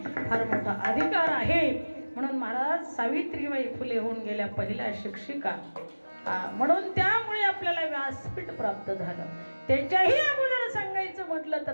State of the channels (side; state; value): both; inverted; correlation -1.00